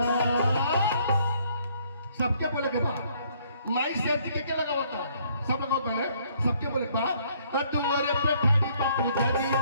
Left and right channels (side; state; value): both; inverted; correlation -0.65